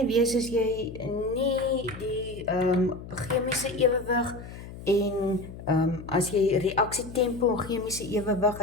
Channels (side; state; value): left; noise; hum, 13 dB below the sound